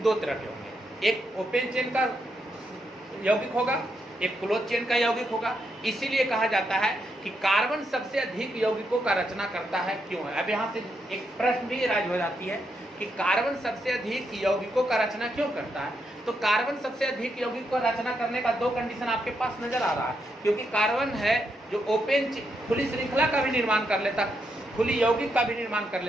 दो तरह के होंगे। एक ओपन चेन का यौगिक होगा, एक क्लोज चेन का यौगिक होगा। इसीलिए कहा जाता है कि कार्बन सबसे अधिक यौगिकों का रचना करता है। क्यों है? अब यहाँ से एक प्रश्न भी राज हो जाती है कि कार्बन सबसे अधिक यौगिकों का रचना क्यों करता है? तो कार्बन सबसे अधिक यौगिक को रचना करने का दो कंडीशन आपके पास नजर आ रहा है। क्योंकि कार्बन है जो ओपन खुली श्रृंखला का भी निर्माण कर लेता है, खुली यौगिक का भी निर्माण कर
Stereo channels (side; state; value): both; normal; correlation 0.81